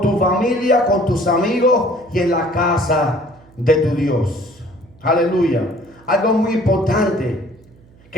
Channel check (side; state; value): right; noise; hum, 28 dB below the sound